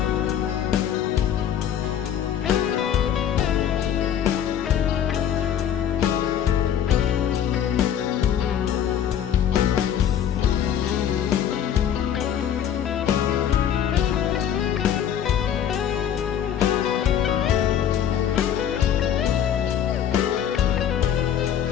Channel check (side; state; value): right; quieter; 9.6 dB